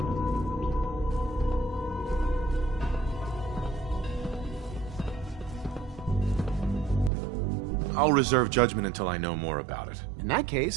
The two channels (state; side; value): drops out; left; at 7.1 s